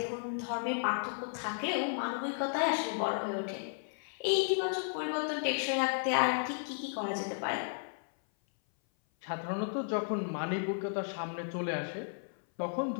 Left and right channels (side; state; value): right; silent; 55 dB below the other